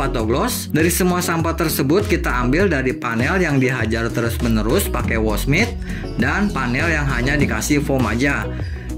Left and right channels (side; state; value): both; identical; correlation 1.00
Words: atau gloss. Dari semua sampo tersebut kita ambil dari panel yang dihajar terus menerus pakai wash mitt dan panel yang hanya dikasih foam aja.